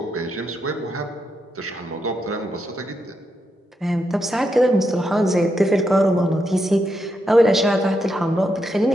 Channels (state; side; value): normal; both; correlation 0.82